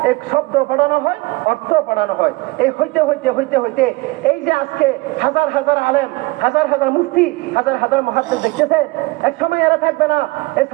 এক শব্দ পড়ানো হয়, অর্থ পড়ানো হয়। এই হইতে হইতে হইতে হইতে এই যে আজকে হাজার হাজার আলেম, হাজার হাজার মুফতি, হাজার হাজার মুহাদ্দিস দেখতেছেন, এক সময় এরা থাকবে না। এই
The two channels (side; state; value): left; quieter; 22.5 dB